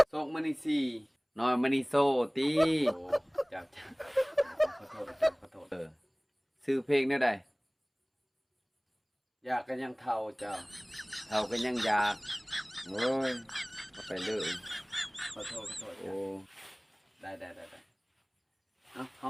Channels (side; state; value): both; identical; correlation 1.00